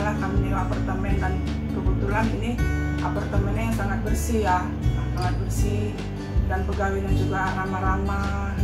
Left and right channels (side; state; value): both; identical; correlation 1.00